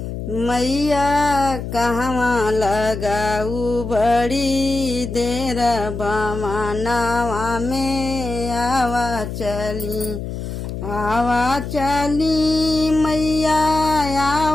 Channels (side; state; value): left; noise; hum, 6 dB below the sound